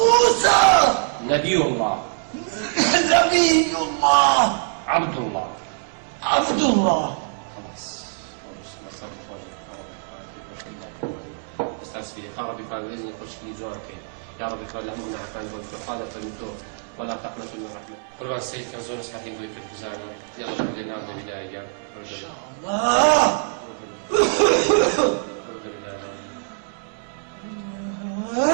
نبي الله عبد الله خلاص استاذ في ربي قال باذن يخش لي جوانك يا رب قال لهم من عفان والفقاده فالمتوب ولا تقنطوا من الرحمه قربان السيد كان زون صحيح نقول في الخزانه يلا بدنا نبدا بدايه ان شاء الله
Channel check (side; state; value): left; silent; digital silence